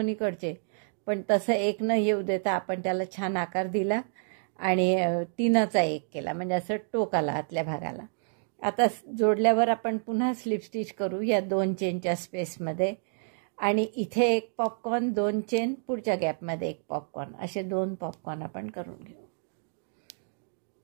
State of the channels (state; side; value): silent; left; 59 dB below the other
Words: इकडचे, पण तसं एक न येऊ देता आपण त्याला छान आकार दिला आणि 3चा 1 केला, म्हणजे असं टोक आला आतल्या भागाला. आता जोडल्यावर आपण पुन्हा स्लिप स्टिच करू या 2 चेनच्या स्पेसमध्ये आणि इथे एक पॉपकॉर्न, 2 चेन, पुढच्या गॅपमध्ये एक पॉपकॉर्न, असे 2 पॉपकॉर्न आपण करून घेऊ.